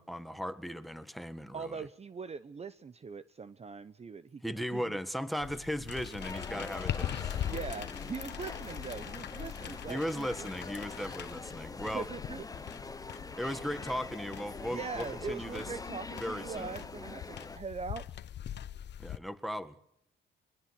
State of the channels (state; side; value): normal; both; correlation 0.69